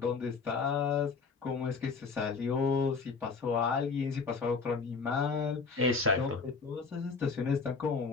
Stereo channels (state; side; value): quieter; right; 4.8 dB